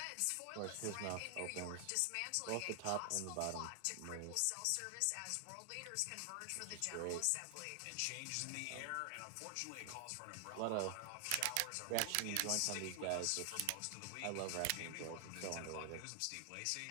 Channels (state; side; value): different; both; correlation 0.00